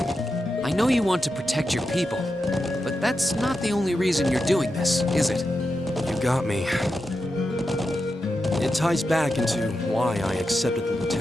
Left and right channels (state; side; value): normal; both; correlation 0.88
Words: I know you want to protect your people, but that's not the only reason you're doing this, is it? You got me. It ties back into why I accepted the